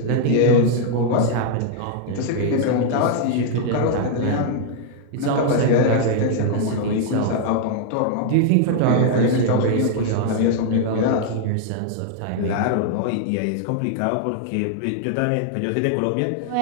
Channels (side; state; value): both; different; correlation 0.00